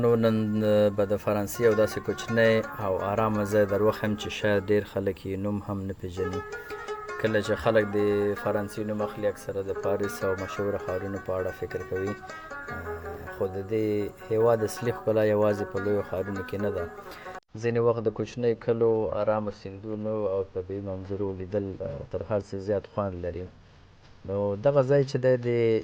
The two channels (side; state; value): both; identical; correlation 1.00